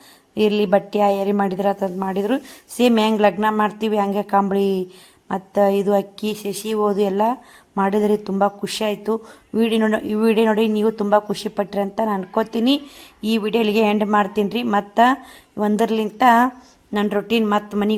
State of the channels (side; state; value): both; identical; correlation 1.00